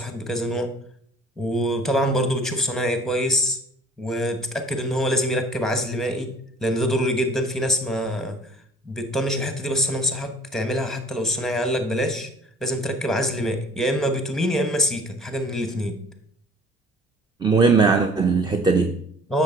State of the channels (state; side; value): normal; both; correlation 0.51